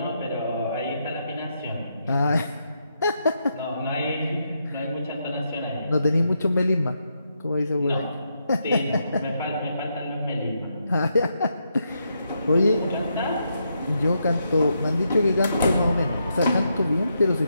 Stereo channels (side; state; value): both; inverted; correlation -0.81